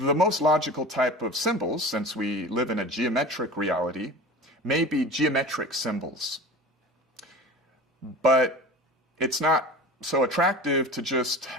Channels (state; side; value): normal; both; correlation 0.35